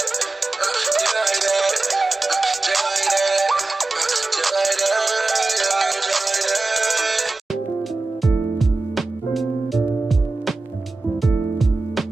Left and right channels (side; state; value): left; quieter; 3.3 dB